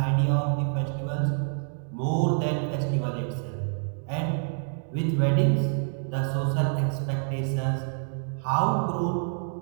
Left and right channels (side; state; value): left; silent; 60 dB below the other